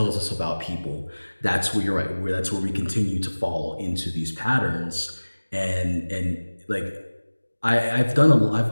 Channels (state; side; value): inverted; both; correlation -1.00